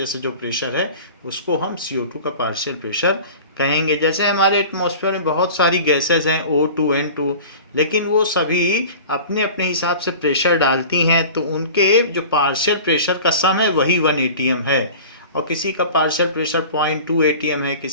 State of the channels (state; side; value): inverted; both; correlation -0.39